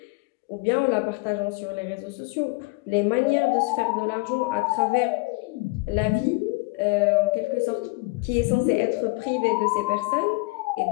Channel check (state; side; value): quieter; right; 25.8 dB